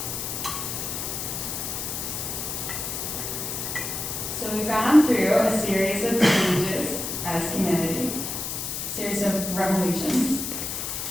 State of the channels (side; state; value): left; noise; hiss, 4 dB below the sound